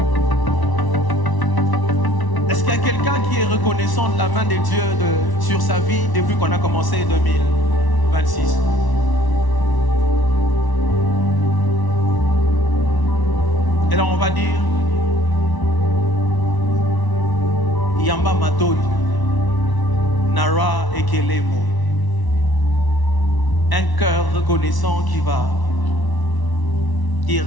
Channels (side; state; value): right; late; 1.0 ms